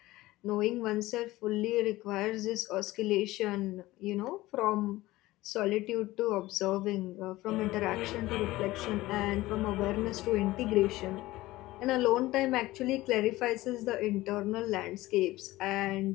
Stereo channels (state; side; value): quieter; right; 18.0 dB